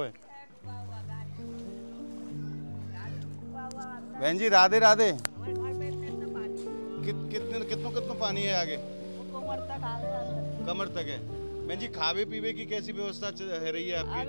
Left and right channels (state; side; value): inverted; both; correlation -1.00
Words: बहन जी राधे राधे। कितनो पानी है आगे? कमर तक है। बहन जी खावे पीवे की कैसी व्यवस्था है रही है आपकी?